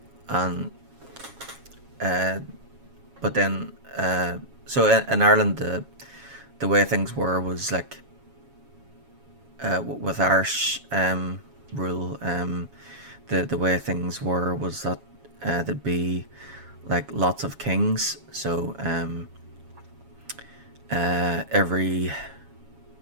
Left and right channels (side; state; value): left; late; 7.3 ms